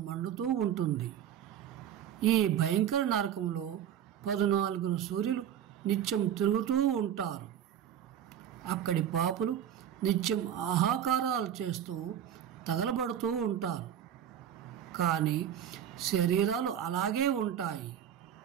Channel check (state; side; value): quieter; left; 9.8 dB